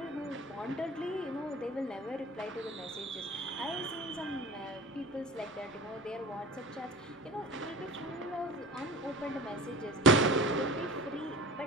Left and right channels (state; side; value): normal; both; correlation 0.38